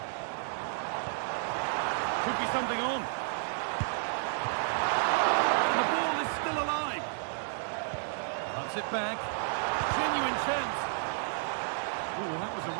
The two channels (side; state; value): left; silent; 57 dB below the other